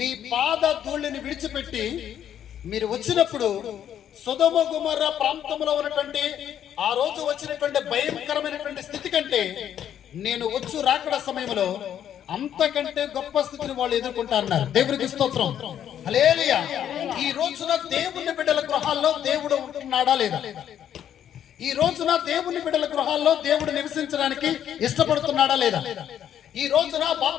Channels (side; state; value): right; quieter; 9.9 dB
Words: పాద ధూళిని విడిచిపెట్టి మీరు వచ్చినప్పుడు సొదొమ గొమొర్రా ప్రాంతంలో ఉన్నటువంటి ఆ రోజు వచ్చినటువంటి భయంకరమైనటువంటి స్థితి కంటే నేను వచ్చు రాకడ సమయంలో అంతకంటే గొప్ప స్థితిని వాళ్ళు ఎదుర్కొంటారన్నారు. దేవునికి స్తోత్రం, హల్లెలూయా. ఈ రోజున దేవుని బిడ్డల గృహాల్లో దేవుడు ఉంటున్నాడా లేదా? ఈ రోజున దేవుని బిడ్డల గృహాల్లో దేవుడు నివసించడానికి ఇష్టపడుతున్నాడా లేదా? ఈ రోజున